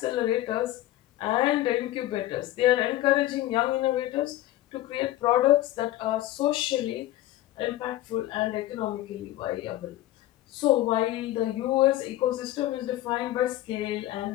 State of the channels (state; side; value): quieter; right; 15.0 dB